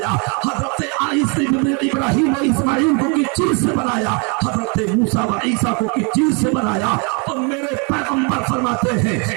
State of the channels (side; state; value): left; quieter; 34.1 dB